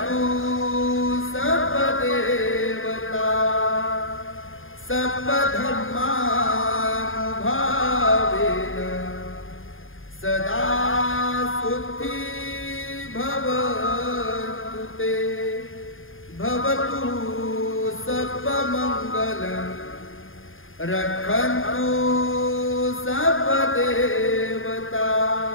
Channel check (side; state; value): right; late; 0.59 ms